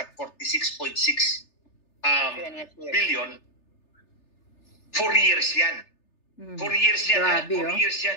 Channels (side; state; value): right; late; 3.3 ms